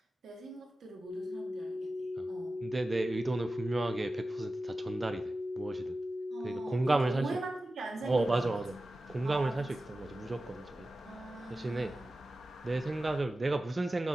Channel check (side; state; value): both; normal; correlation 0.94